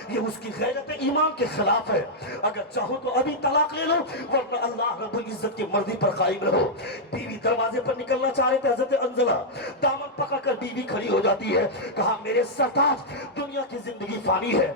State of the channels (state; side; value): normal; both; correlation -0.05